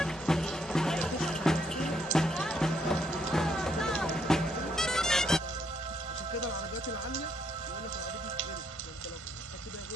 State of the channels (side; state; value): both; normal; correlation 0.73